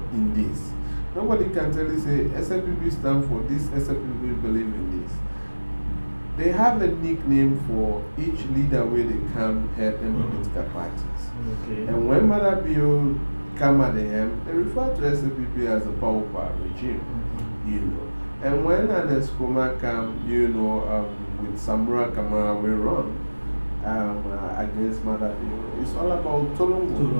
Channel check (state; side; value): inverted; both; correlation -1.00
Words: in this. Nobody can tell you say SLPP stand for this, SLPP believe in this. They have a nickname for each leader where they come head in political parties. Okay. And when Mother Bill come at the end, they refer to SLPP as a power regime, And when an Escoma come, with Samura Kamara we run against Mother Bill, it's all about